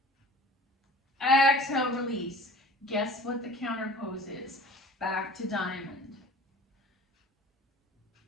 Exhale, release. Guess what the counter pose is? Back to diamond.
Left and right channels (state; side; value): normal; both; correlation 0.43